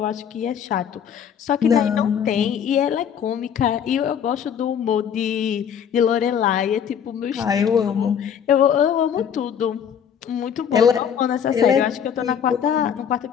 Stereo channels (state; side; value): quieter; right; 8.2 dB